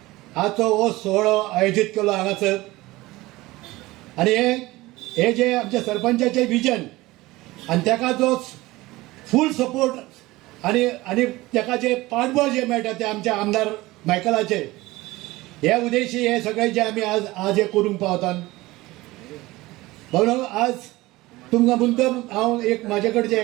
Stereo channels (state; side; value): quieter; left; 19.5 dB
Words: आजचो हो सोहळो आयोजित केलो हांगासर. आणि हे जे आमच्या सरपंचाचे विजन आणि ताका जो फूल सपोर्ट आणि ताका जे पाठबळ जे मेळटा ते आमच्या आमदार मायकलाचे हे उद्देशी हे सगळे जे आमी आज हे करूंक पावतात. म्हणून आज तुमकां मुद्दम हांव एक म्हाजे कडचे